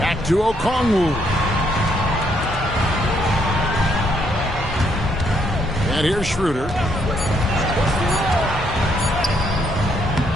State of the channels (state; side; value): normal; both; correlation 0.72